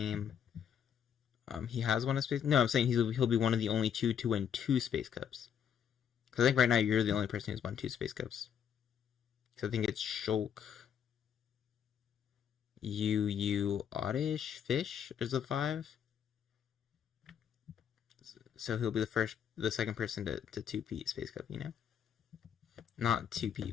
He has won a space. No, I'm saying he'll be one of the only 2 to win 2 Space Cups. Because I think right now you're the only person who's won 2 Space Cups. So I think it's Shulk, Oddish, Fish is the 5. So he'll be the second person to 2-peat Space Cup, Not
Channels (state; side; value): quieter; right; 8.4 dB